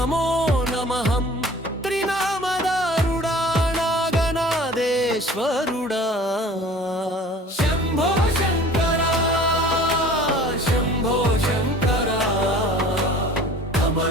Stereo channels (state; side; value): normal; both; correlation 0.46